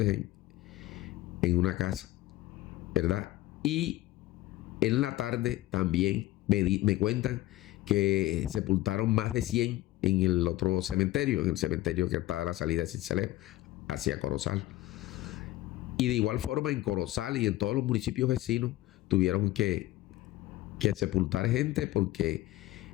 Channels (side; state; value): right; quieter; 16.5 dB